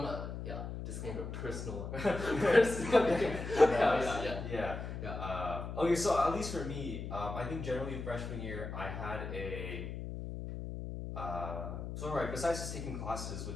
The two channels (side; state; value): left; noise; hum, 6 dB below the sound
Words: disclaimer, personal. Yeah. Okay, so at least for me, I think generally freshman year I had a. Besides just taking classes,